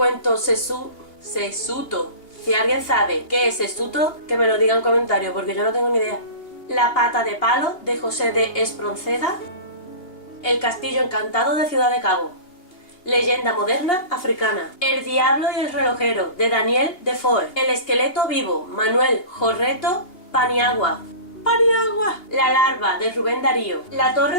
Sesuto. Si alguien sabe qué es Sesuto, que me lo diga en comentarios, porque yo no tengo ni idea. La pata de palo, de José de Espronceda. El castillo encantado, de Ciudad de Cabo. Leyenda moderna africana. El diablo y el relojero, de Daniel Defoe. El esqueleto vivo, Manuel Jorreto Paniagua. La larva, de Rubén Darío. La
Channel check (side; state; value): right; late; 2.8 ms